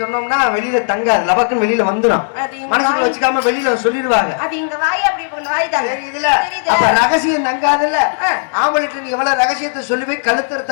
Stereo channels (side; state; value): right; silent; digital silence